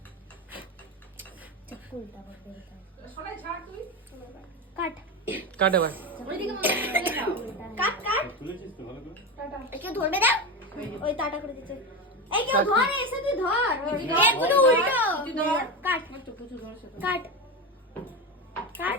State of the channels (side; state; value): both; normal; correlation 0.18